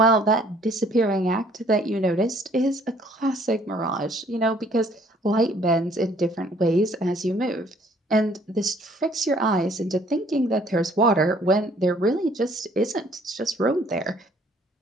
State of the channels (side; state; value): both; normal; correlation 0.60